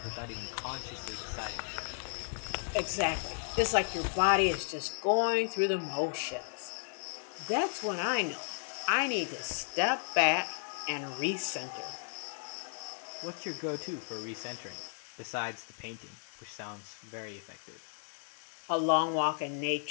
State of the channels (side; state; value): right; silent; 55 dB below the other